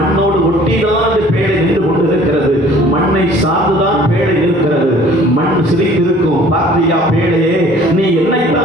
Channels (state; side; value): normal; both; correlation 0.52